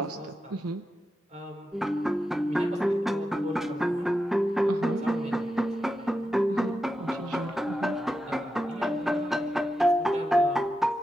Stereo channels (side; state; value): both; normal; correlation 0.89